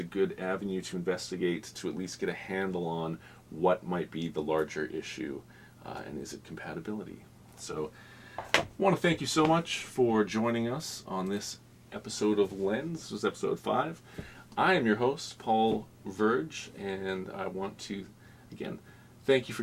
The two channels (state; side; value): identical; both; correlation 1.00